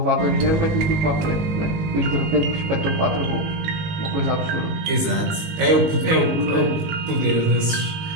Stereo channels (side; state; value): left; late; 19 ms